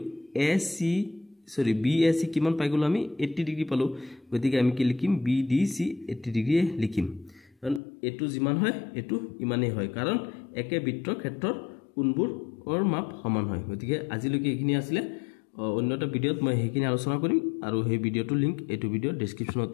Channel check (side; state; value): right; drops out; at 7.8 s